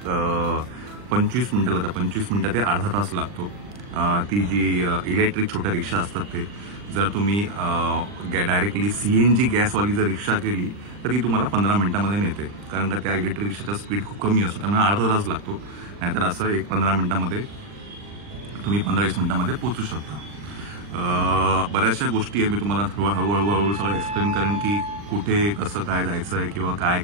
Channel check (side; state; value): left; late; 40 ms